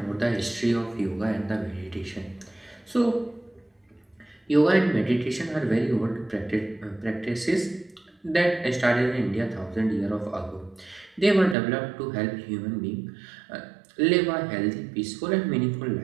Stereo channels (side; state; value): left; drops out; at 11.6 s